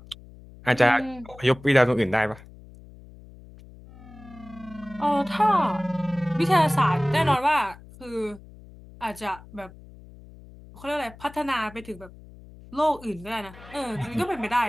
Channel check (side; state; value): left; noise; hum, 20 dB below the sound